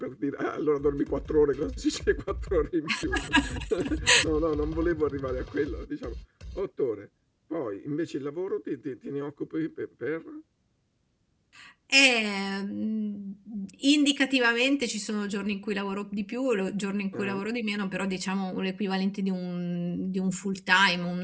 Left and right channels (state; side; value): identical; both; correlation 1.00